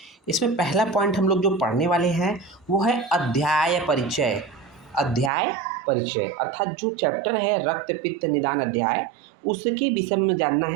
इसमें पहला पॉइंट हम लोग जो पढ़ने वाले हैं वो है अध्याय परिचय। अध्याय परिचय अर्थात जो चैप्टर है रक्त पित्त निदान अध्याय, उसके विषय में जानना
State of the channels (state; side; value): drops out; left; at 5.3 s